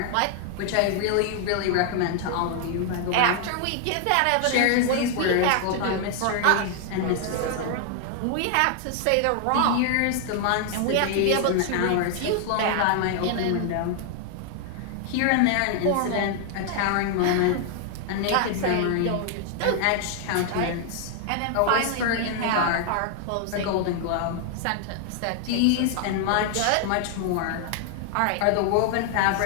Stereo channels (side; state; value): both; different; correlation 0.00